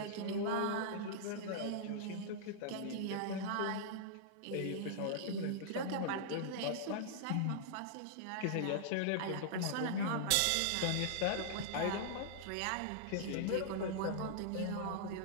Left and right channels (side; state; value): both; different; correlation -0.01